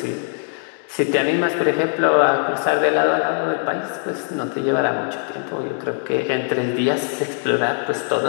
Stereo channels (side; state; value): right; silent; digital silence